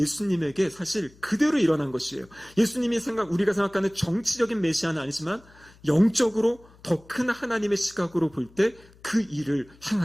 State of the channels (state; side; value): noise; left; hum, 26 dB below the sound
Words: 사실 그대로 일어난 것이에요. 예수님이 우리가 생각하는 정치적인 메시아는 아니지만 영적으로 더 큰 하나님의 시각으로 볼 때 그 일을